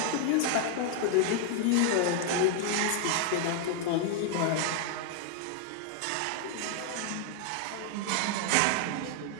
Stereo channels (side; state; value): both; different; correlation 0.00